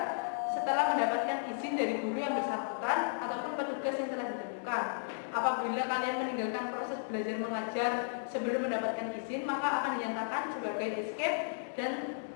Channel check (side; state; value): right; silent; digital silence